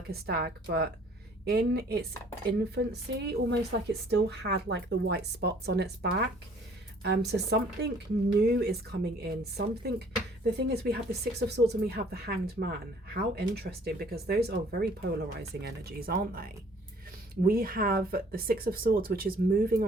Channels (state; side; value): normal; both; correlation 0.57